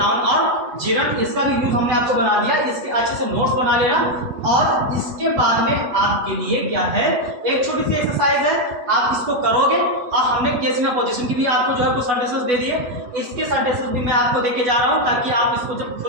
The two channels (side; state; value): left; late; 8.1 ms